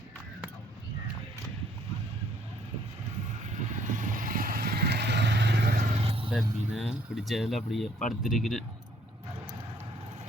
மீனை பிடிச்சதில் அப்படியே படுத்திருக்கிறேன்.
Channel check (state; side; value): normal; both; correlation 0.64